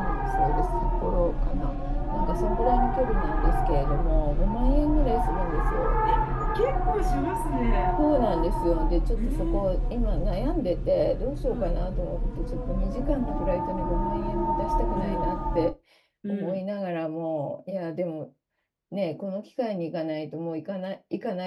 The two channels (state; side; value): identical; both; correlation 1.00